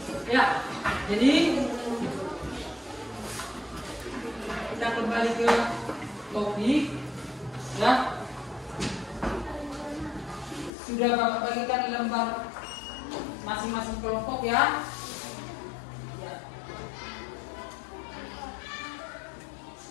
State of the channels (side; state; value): right; drops out; at 10.7 s